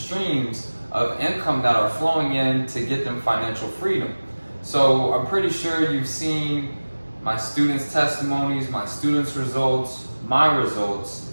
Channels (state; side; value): inverted; both; correlation -1.00